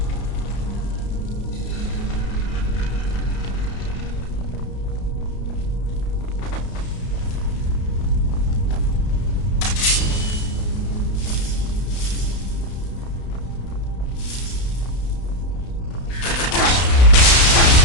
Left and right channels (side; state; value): right; late; 32 ms